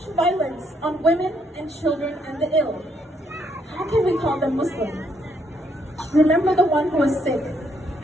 violence on women and children and the ill. How can we call them Muslim? Remember the one who was sick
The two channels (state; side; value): normal; both; correlation 0.73